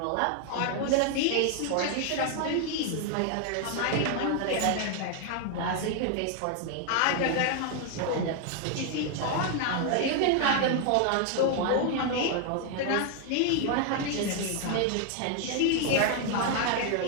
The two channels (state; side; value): different; both; correlation 0.00